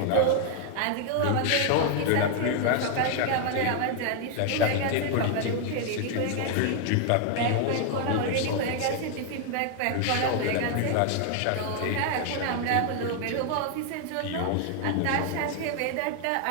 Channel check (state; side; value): different; both; correlation 0.00